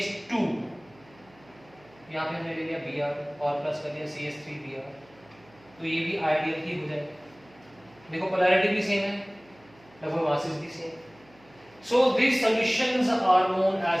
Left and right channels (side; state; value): right; noise; hum, 28 dB below the sound